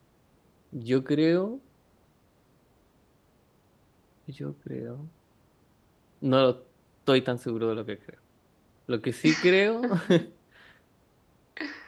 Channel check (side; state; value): both; identical; correlation 1.00